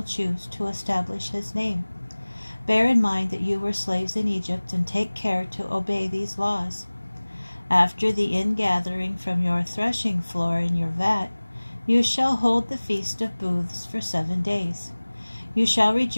choose to establish his name. Bear in mind that you were slaves in Egypt, and take care to obey these laws. After the ingathering from your threshing floor in your vat, you shall hold the Feast of Booths for 7 days. You shall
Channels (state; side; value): inverted; both; correlation -1.00